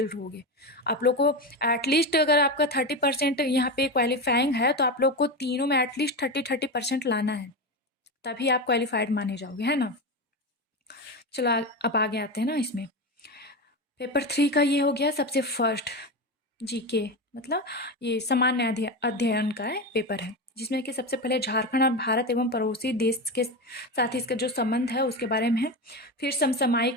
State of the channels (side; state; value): both; normal; correlation 0.18